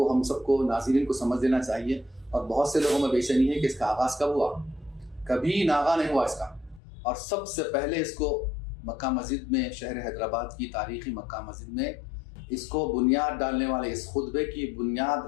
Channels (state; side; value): drops out; right; at 6.8 s